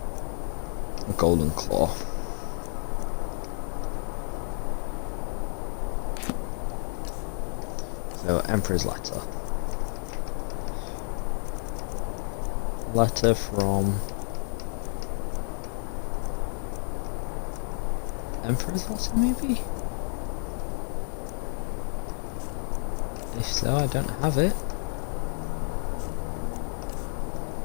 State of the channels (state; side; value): silent; right; 58 dB below the other